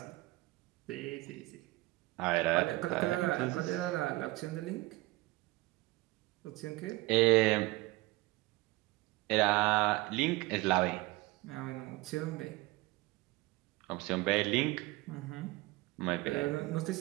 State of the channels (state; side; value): quieter; left; 21.0 dB